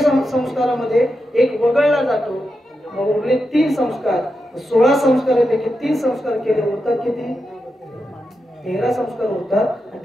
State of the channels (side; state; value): both; normal; correlation 0.88